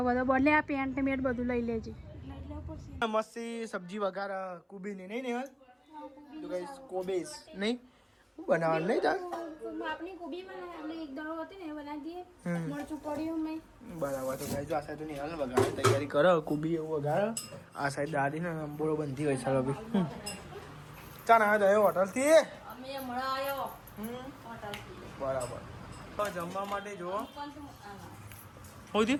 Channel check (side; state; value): both; identical; correlation 1.00